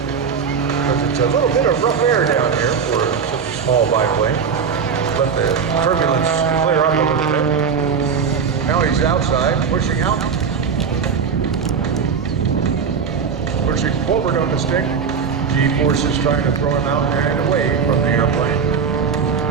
it's a little bit of rough air down here for such a small biplane. Let the turbulence clear up a little bit. Now he's outside, pushing out. Pushing forward on the stick. G-forces trying to throw him out and away from the airplane.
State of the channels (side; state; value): left; quieter; 6.3 dB